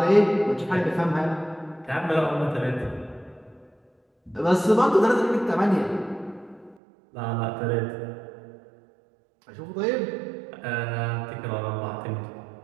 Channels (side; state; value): left; drops out; at 6.8 s